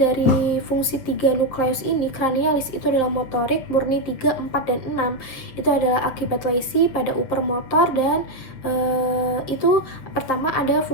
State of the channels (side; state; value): right; late; 7.9 ms